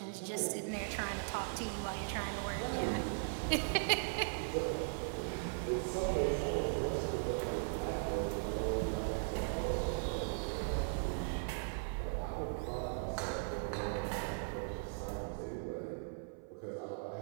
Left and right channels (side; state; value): left; silent; 52 dB below the other